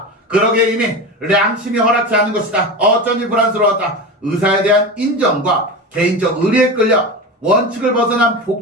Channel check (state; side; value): normal; both; correlation 0.25